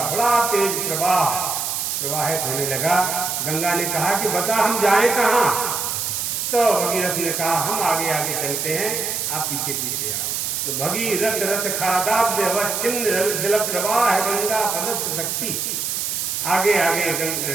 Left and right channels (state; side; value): noise; right; hiss, 1 dB below the sound